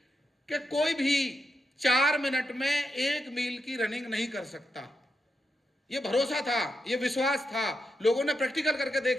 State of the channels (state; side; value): normal; both; correlation 0.85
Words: कि कोई भी 4 मिनट में 1 मील की रनिंग नहीं कर सकता। ये भरोसा था, ये विश्वास था। लोगों ने प्रैक्टिकल करके